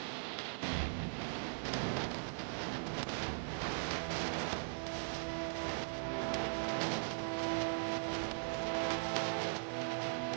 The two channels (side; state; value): left; silent; digital silence